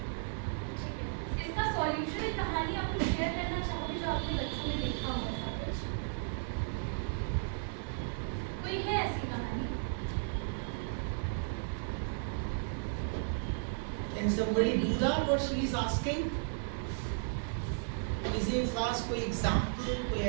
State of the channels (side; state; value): left; silent; digital silence